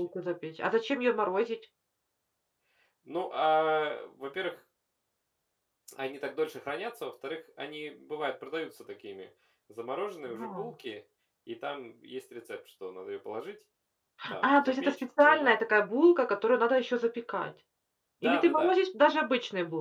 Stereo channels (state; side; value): identical; both; correlation 1.00